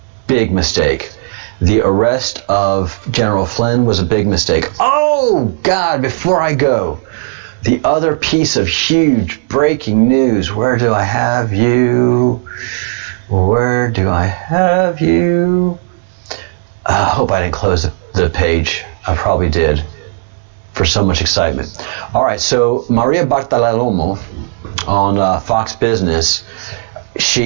Big mistake. The arrest of General Flynn was a big mistake. Oh, God, before I go, the other piece of huge breaking news. Where do I have you? Where do I have you? I hope I didn't close the page. I probably did. for so much excitement. All right, so Maria Bartolomeo on Fox Business,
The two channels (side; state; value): left; silent; digital silence